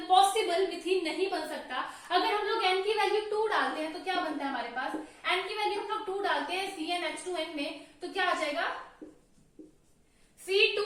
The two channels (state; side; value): identical; both; correlation 1.00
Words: मिथीन नहीं बन सकता। अगर हम लोग एन की वैल्यू 2 डालते हैं तो क्या बनता है हमारे पास, एन की वैल्यू हम लोग 2 डालते हैं CnH2n में, तो क्या आ जाएगा